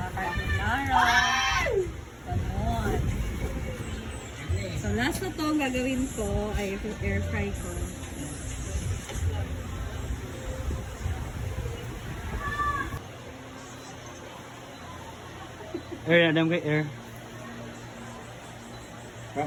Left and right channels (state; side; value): identical; both; correlation 1.00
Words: Ganon. So last na to ang gagawin ko ay air fry ko. Air, adam kay air.